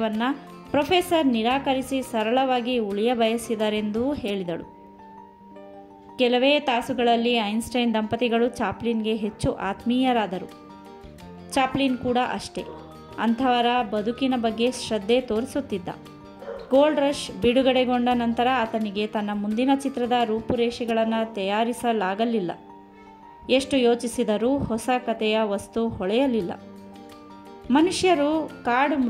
ಪ್ರೊಫೆಸರ್ ನಿರಾಕರಿಸಿ ಸರಳವಾಗಿ ಉಳಿಯ ಬಯಸಿದರೆಂದೂ ಹೇಳಿದಳು. ಕೆಲವೇ ತಾಸುಗಳಲ್ಲಿ ಐನ್ಸ್ಟೈನ್ ದಂಪತಿಗಳು ಚಾಪ್ಲಿನ್ಗೆ ಹೆಚ್ಚು ಆತ್ಮೀಯರಾದರು. ಚಾಪ್ಲಿನ್ ಕೂಡ ಅಷ್ಟೇ. ಅಂಥವರ ಬದುಕಿನ ಬಗ್ಗೆ ಶ್ರದ್ಧೆ ತೋರಿಸುತ್ತಿದ್ದ. ಗೋಲ್ಡ್ ರಶ್ ಬಿಡುಗಡೆಗೊಂಡ ನಂತರ ಆತನಿಗೆ ತನ್ನ ಮುಂದಿನ ಚಿತ್ರದ ರೂಪುರೇಷೆಗಳನ್ನು ತಯಾರಿಸಲಾಗಲಿಲ್ಲ. ಎಷ್ಟು ಯೋಚಿಸಿದರೂ ಹೊಸ ಕಥೆಯ ವಸ್ತು ಹೊಳೆಯಲಿಲ್ಲ. ಮನುಷ್ಯರು ಕಾಡು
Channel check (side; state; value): both; identical; correlation 1.00